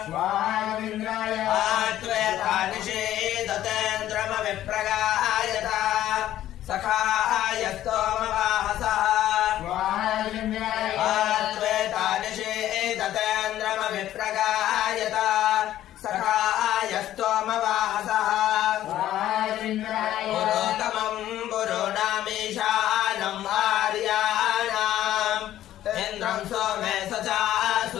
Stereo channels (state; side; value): quieter; right; 12.9 dB